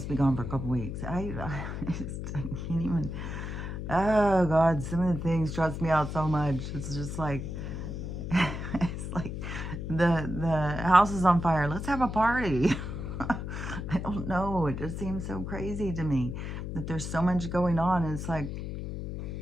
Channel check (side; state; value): left; noise; hum, 5 dB below the sound